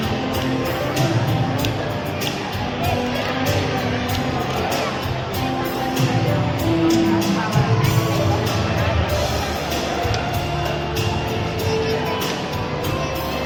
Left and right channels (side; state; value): both; identical; correlation 1.00